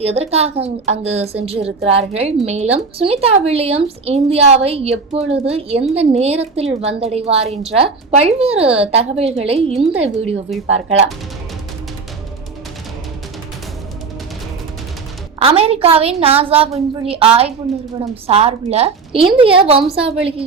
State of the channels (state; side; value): quieter; left; 4.7 dB